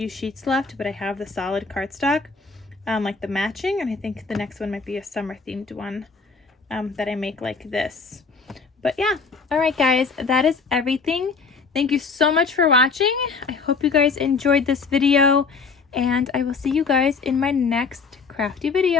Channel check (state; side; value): quieter; right; 4.8 dB